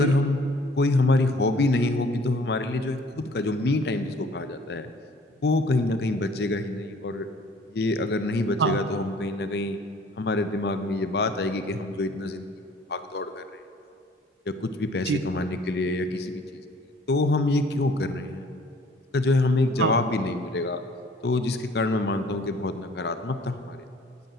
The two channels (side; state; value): both; normal; correlation 0.55